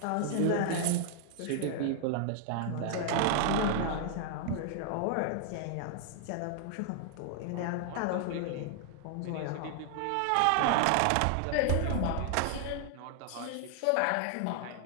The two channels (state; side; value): different; both; correlation 0.00